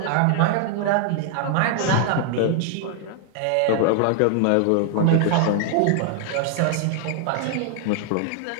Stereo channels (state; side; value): different; both; correlation 0.00